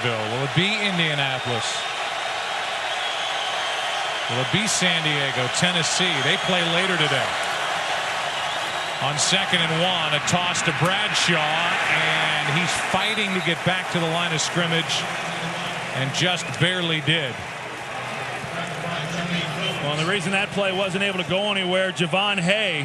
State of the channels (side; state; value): both; identical; correlation 1.00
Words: Will it be Indianapolis? Will it be San Diego, Tennessee? They play later today. On 2nd and 1, a toss to Bradshaw, and he's fighting to get back to the line of scrimmage, and just barely did. Well, and the reason that play wasn't able to go anywhere, Javon